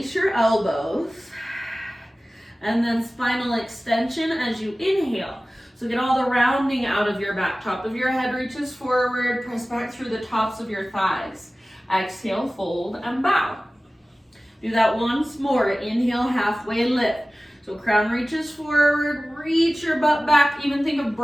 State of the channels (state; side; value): normal; both; correlation 0.97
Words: your elbows. And then spinal extension as you inhale. So get all the rounding out of your back. Top of your head reaches forward. Press back through the tops of your thighs. Exhale, fold, and bow. Do that once more. Inhale, halfway lift. So crown reaches forward. Reach your butt back. Even think of